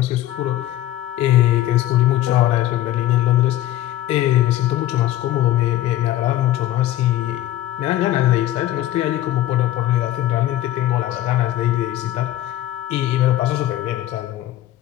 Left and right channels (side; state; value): right; quieter; 14.1 dB